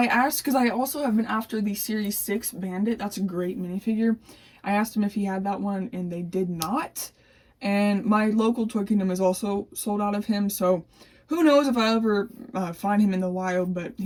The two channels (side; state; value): both; identical; correlation 1.00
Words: because I also have been after the Series 6 Bandit. That's a great minifigure. I asked him if he had that one, and they did not. And my local Toy Kingdom is also sold out of him, so who knows if I ever find him in the wild, but